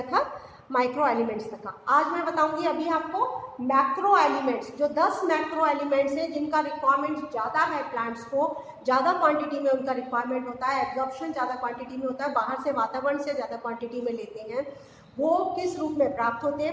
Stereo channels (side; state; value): both; identical; correlation 1.00